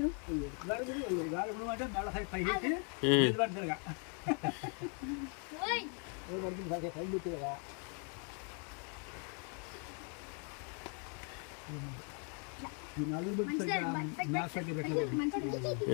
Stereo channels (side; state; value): right; quieter; 39.4 dB